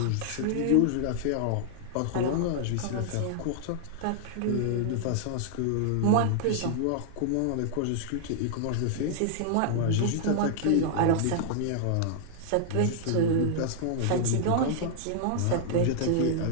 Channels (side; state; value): both; different; correlation -0.01